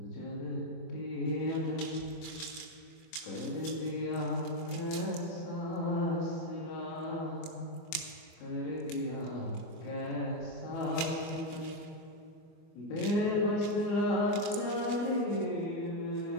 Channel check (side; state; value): right; late; 24 ms